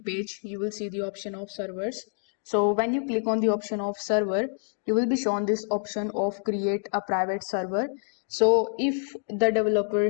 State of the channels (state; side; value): silent; right; digital silence